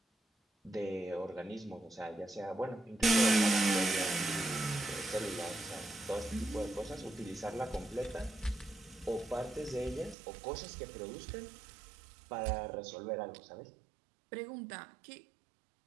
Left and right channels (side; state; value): left; drops out; at 10.2 s